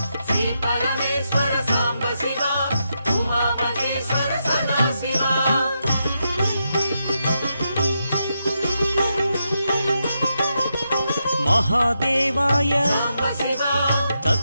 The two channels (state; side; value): inverted; both; correlation -0.84